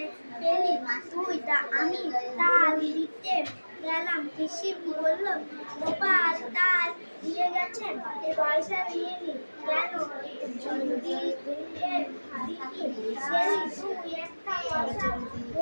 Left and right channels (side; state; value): both; inverted; correlation -1.00